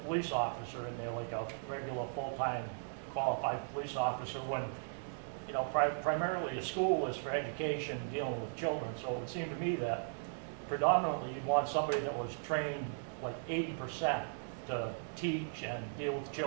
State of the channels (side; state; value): left; silent; digital silence